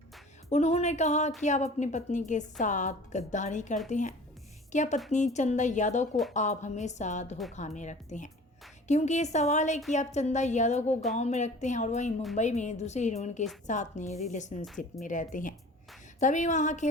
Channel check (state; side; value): normal; both; correlation 0.44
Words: उन्होंने कहा कि आप अपनी पत्नी के साथ गद्दारी करते हैं। क्या पत्नी चंदा यादव को आप हमेशा धोखा में रखते हैं? क्योंकि ये सवाल है कि आप चंदा यादव को गांव में रखते हैं और वहीं मुंबई में दूसरे हीरोइन के साथ में रिलेशनशिप में रहते हैं। तभी वहाँ